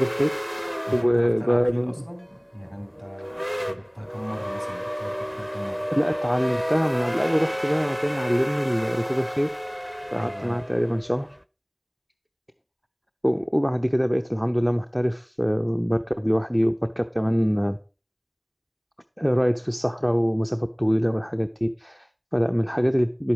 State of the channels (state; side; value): identical; both; correlation 1.00